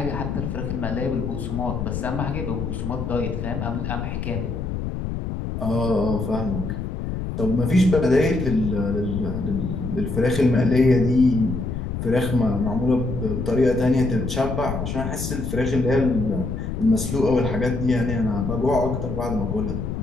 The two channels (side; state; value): left; noise; rumble, 4 dB below the sound